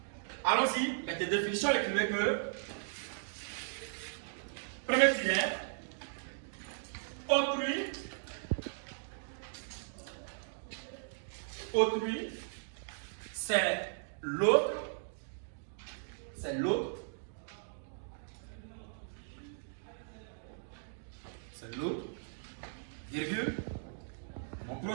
Allons-y, avec tes définitions, écrivez que premier tiret, autrui, c'est l'autre, virgule, mon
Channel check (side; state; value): left; silent; digital silence